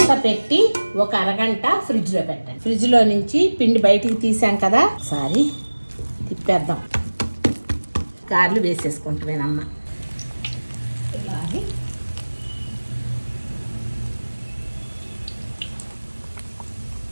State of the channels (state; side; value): inverted; both; correlation -1.00